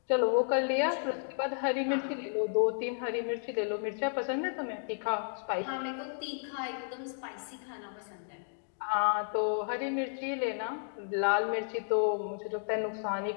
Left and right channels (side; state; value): right; silent; digital silence